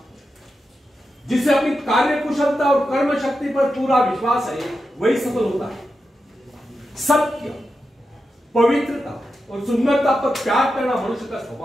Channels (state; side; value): normal; both; correlation 0.89